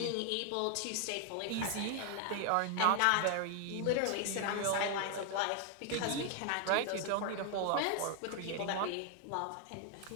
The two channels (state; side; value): different; both; correlation 0.00